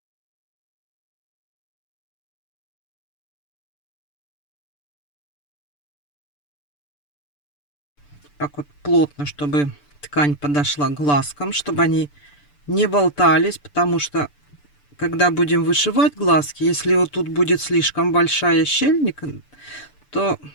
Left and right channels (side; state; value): right; late; 6.8 ms